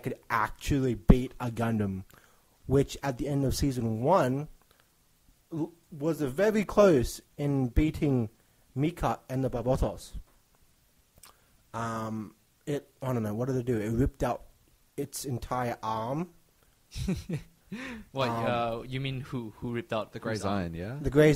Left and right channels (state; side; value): identical; both; correlation 1.00